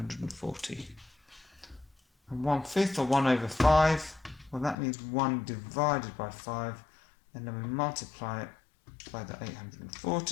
And 1/5 or 1/5, well, that means 1 divided by 5, and then we multiply it by the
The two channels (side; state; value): right; drops out; at 4.8 s